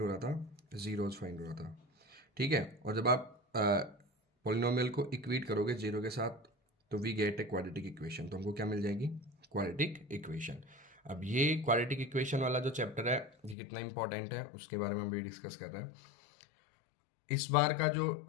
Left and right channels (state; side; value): drops out; right; at 13.6 s